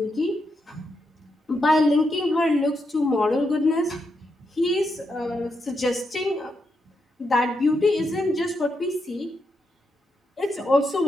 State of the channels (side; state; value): both; normal; correlation 0.83